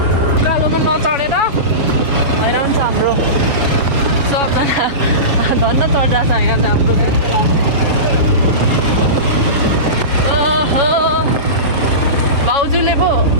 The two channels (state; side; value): late; left; 7.1 ms